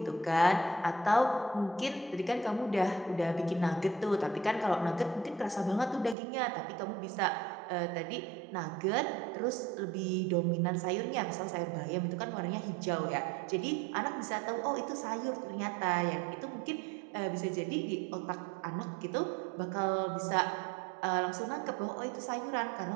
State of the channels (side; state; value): left; drops out; at 6.2 s